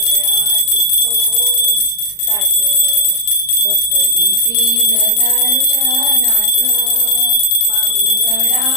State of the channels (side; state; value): right; late; 39 ms